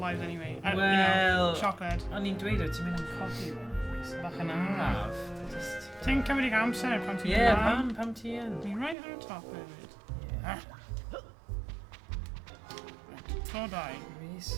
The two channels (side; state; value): left; drops out; at 9.0 s